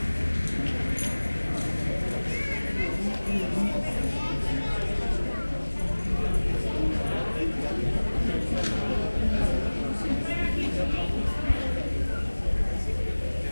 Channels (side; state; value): both; inverted; correlation -1.00